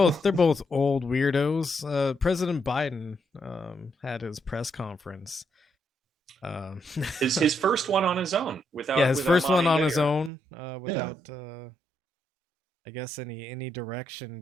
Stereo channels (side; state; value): left; drops out; at 10.3 s